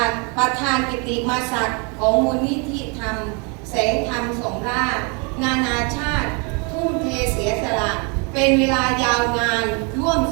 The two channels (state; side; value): quieter; left; 33.8 dB